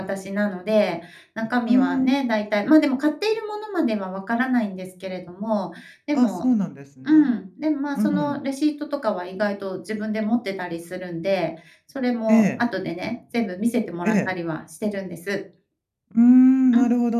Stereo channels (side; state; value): both; identical; correlation 1.00